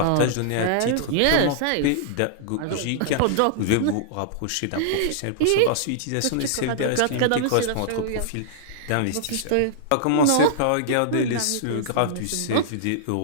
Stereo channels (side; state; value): both; different; correlation -0.01